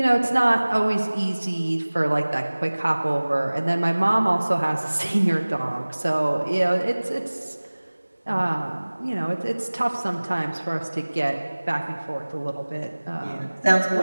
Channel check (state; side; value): inverted; both; correlation -1.00